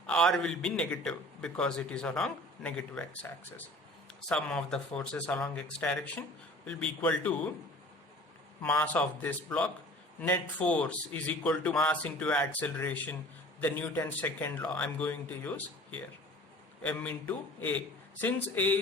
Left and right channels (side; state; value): both; normal; correlation 0.45